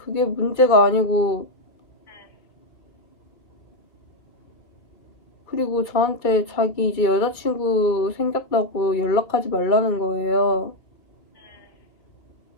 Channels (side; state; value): right; late; 2.3 ms